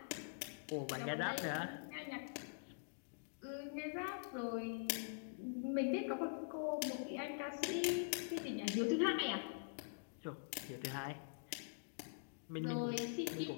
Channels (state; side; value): silent; right; digital silence